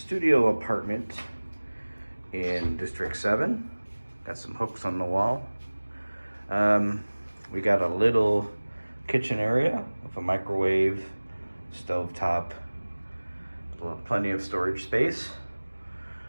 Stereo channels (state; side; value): inverted; both; correlation -1.00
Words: apartment in District 7. Got some hooks on the wall. We got a little kitchen area with a microwave, stovetop, plenty of storage space.